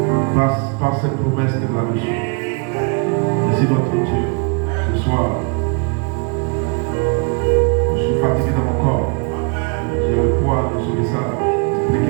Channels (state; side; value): quieter; left; 34.3 dB